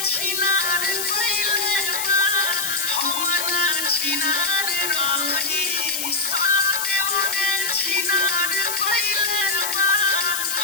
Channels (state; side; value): noise; left; hiss, 2 dB below the sound